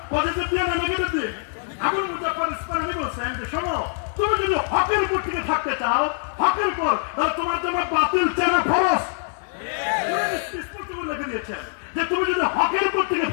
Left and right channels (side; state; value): right; silent; 63 dB below the other